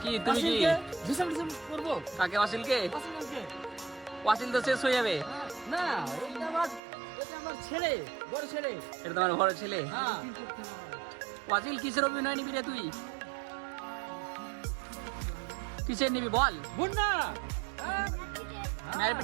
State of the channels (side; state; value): left; drops out; at 6.8 s